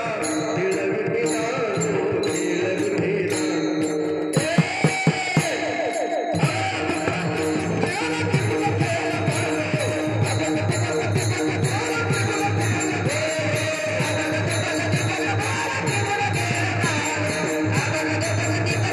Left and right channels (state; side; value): identical; both; correlation 1.00